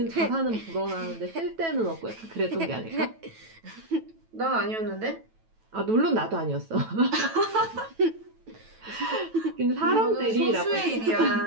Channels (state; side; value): late; left; 9.1 ms